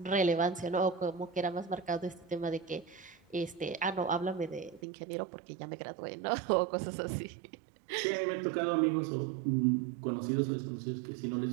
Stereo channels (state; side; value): drops out; left; at 4.8 s